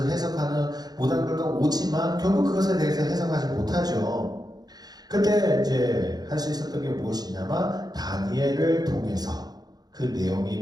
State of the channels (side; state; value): left; late; 0.19 ms